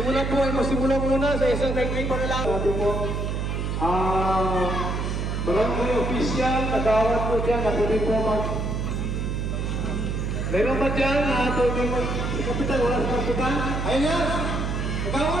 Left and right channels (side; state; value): right; noise; hum, 1 dB below the sound